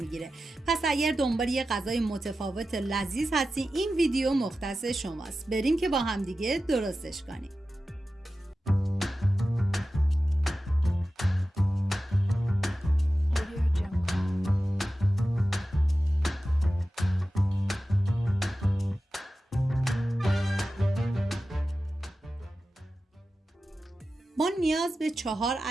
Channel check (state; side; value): normal; both; correlation 0.94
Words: پس اگر دنبال یه غذای متفاوت لذیذ هستین این ویدیو مختص شماست. بریم که با هم دیگه درستش کنیم. ما نیاز به 4